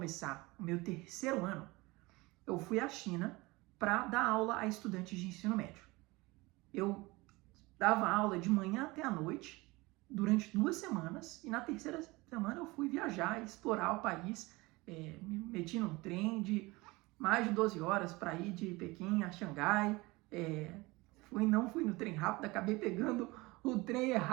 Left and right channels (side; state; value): left; quieter; 22.6 dB